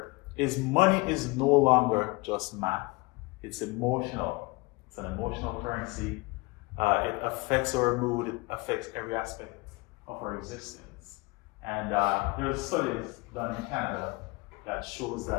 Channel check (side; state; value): right; quieter; 24.9 dB